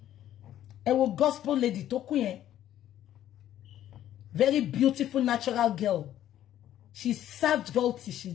ẹ wo gospel lady tó kú yẹn very beautiful natural girl she served God till she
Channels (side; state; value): right; quieter; 12.0 dB